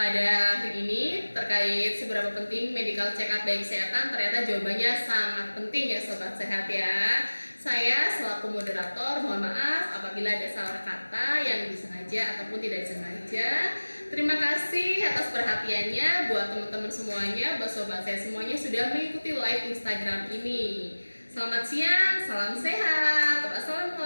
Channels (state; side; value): inverted; both; correlation -1.00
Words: hari ini terkait seberapa penting medical check up baik kesehatan. Ternyata jawabannya sangat penting ya sobat sehat ya. Saya selaku moderator mohon maaf apabila ada salah kata yang disengaja ataupun tidak disengaja. Terima kasih atas perhatiannya buat teman-teman semuanya, buat sobat saya semuanya sudah mengikuti live Instagram ini. Selamat siang, salam sehat.